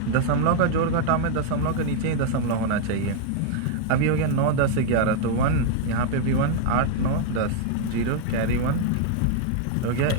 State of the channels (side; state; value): both; different; correlation 0.00